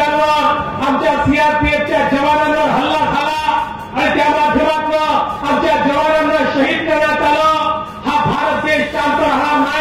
आमच्या सीआरपीएफच्या जवानांवर हल्ला झाला आणि त्या माध्यमातून आमच्या जवानांना शहीद करण्यात आलं. हा भारत देश शांत राहणार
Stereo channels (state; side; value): identical; both; correlation 1.00